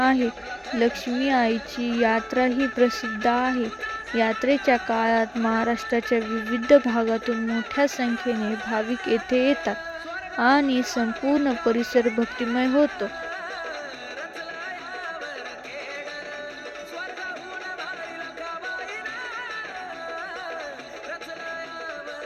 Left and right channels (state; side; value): identical; both; correlation 1.00